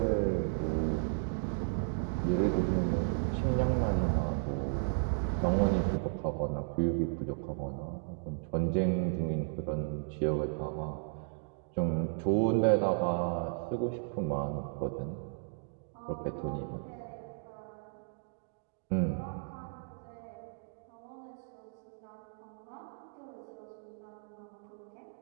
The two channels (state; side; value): silent; left; digital silence